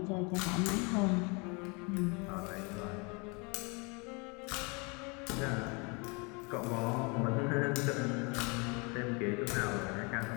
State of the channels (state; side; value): quieter; right; 30.7 dB